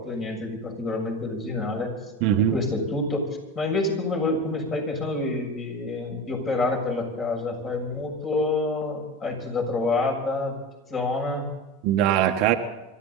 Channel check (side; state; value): both; normal; correlation 0.27